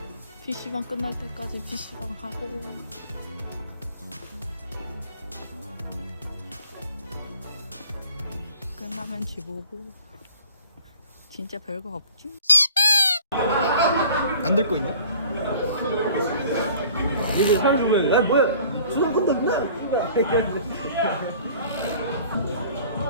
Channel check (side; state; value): both; inverted; correlation -0.49